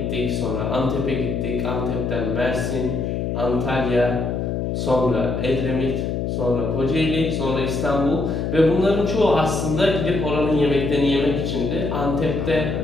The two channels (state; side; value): noise; left; hum, 1 dB below the sound